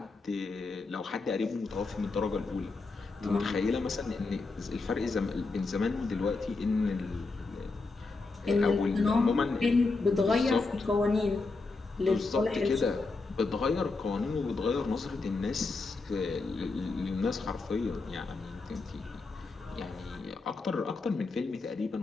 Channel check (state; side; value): quieter; right; 3.8 dB